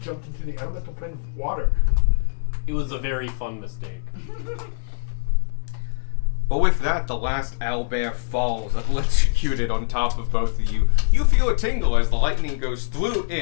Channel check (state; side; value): silent; right; digital silence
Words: jumped into the elemental plane of water. It was a very fun mistake. But with that, the last owlbear falls, electrocuted on top of both of you. You feel a tingle as the lightning goes through